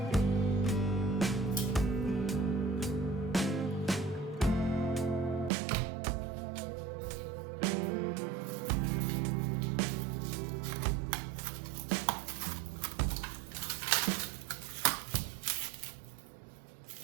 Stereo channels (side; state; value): left; drops out; at 5.5 s